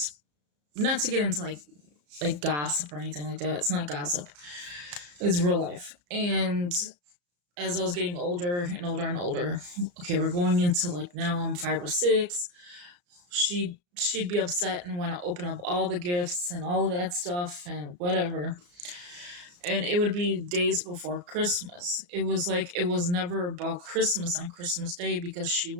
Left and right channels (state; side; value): late; left; 34 ms